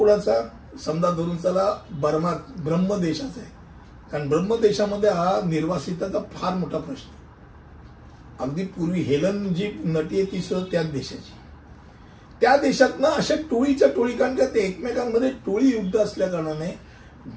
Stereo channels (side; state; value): both; identical; correlation 1.00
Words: समजा धरून चला ब्रह्म देशाचा आहे. कारण ब्रह्म देशामध्ये हा निर्वासिताचा फार मोठा प्रश्न आहे. अगदी पूर्वी हेलन जी नटी आहे ती सुद्धा त्याच देशाची. त्या देशातनं अशा टोळीच्या टोळी, कारण का ते एकमेकांमध्ये टोळी युद्ध असल्या कारणाने